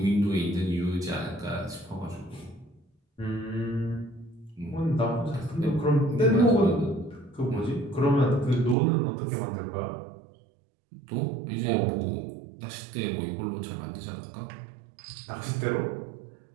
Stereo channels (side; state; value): left; drops out; at 8.8 s